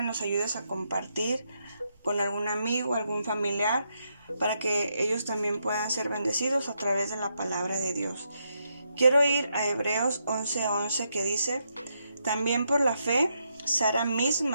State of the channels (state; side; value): inverted; both; correlation -0.80